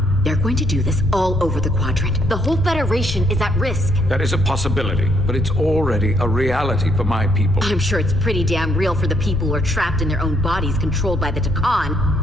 They're going to do this all over the Quadrant. The whole Federation is at risk. That is a possibility, but it's already a reality for my people. I'm sure it's pretty damn real for the people who are trapped in their own bodies controlled by the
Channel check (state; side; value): normal; both; correlation 0.70